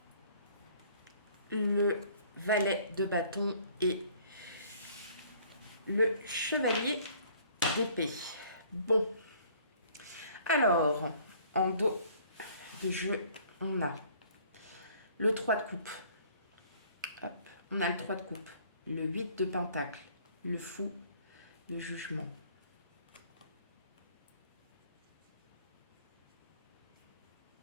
Le valet de bâton et le chevalier d'épée. Bon. Alors, en dos de jeu, on a le 3 de coupe. Hop. On a le 3 de coupe. Le 8 de pentacle. Le fou. Le jugement.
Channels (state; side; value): inverted; both; correlation -0.56